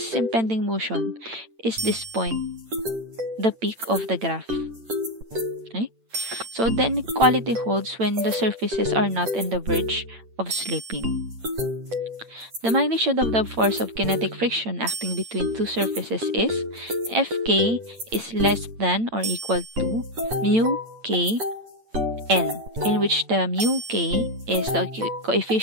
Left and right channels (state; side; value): late; left; 8.9 ms